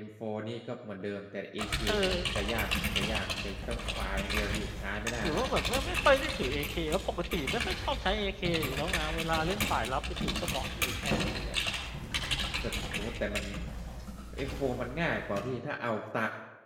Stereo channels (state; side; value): identical; both; correlation 1.00